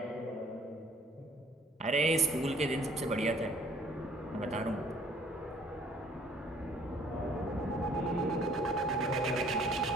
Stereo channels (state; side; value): normal; both; correlation 0.57